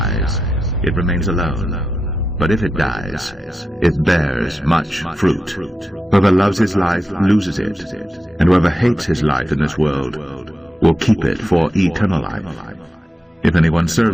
it remains alone. But if it dies, it bears much fruit. Whoever loves his life loses it, and whoever hates his life in this world will keep it for eternal life. If anyone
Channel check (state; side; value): normal; both; correlation 0.89